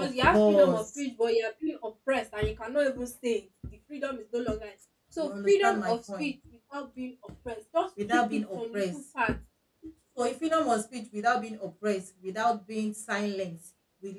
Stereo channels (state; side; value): identical; both; correlation 1.00